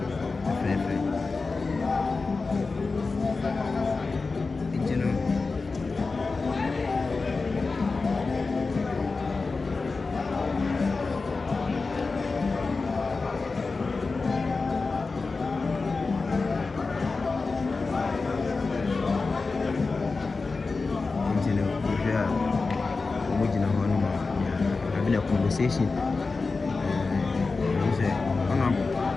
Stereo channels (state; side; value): quieter; right; 4.0 dB